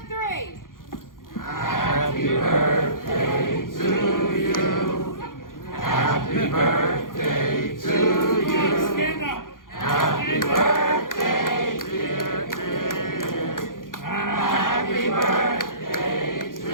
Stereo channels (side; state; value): right; late; 0.90 ms